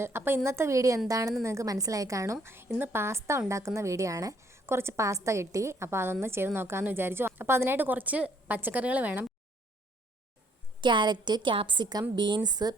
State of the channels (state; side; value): normal; both; correlation 0.65